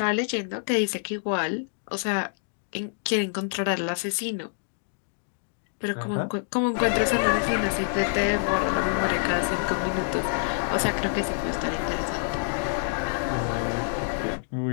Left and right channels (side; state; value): right; silent; digital silence